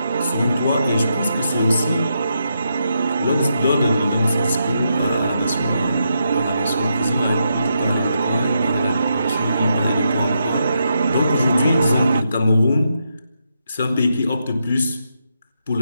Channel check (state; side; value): inverted; both; correlation -0.82